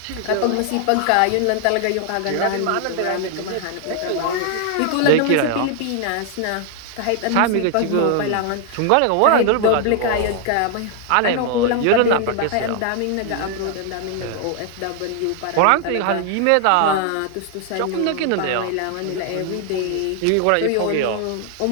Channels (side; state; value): both; different; correlation 0.00